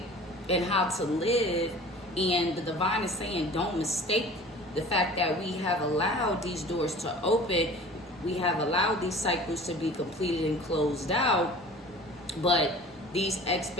And how to live. And the divine is saying, don't mistake the fact that we have allowed these doors to open. We have allowed these cycles to be completed and closed out. But these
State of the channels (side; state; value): both; normal; correlation 0.43